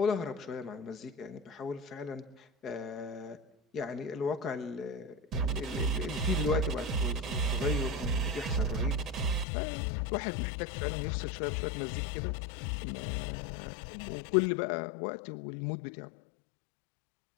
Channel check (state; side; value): drops out; right; at 9.5 s